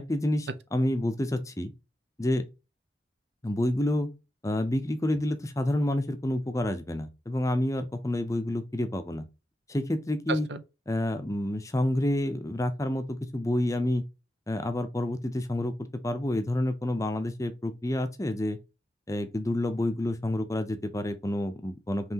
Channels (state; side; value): normal; both; correlation 0.89